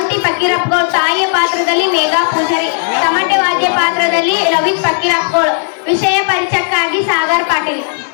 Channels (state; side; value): silent; right; 58 dB below the other